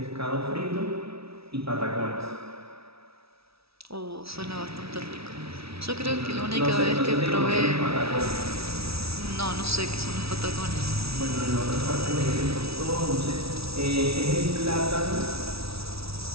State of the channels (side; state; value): left; late; 0.76 ms